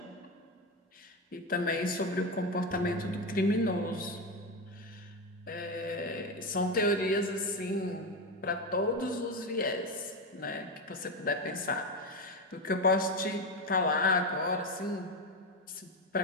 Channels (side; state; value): both; normal; correlation 0.14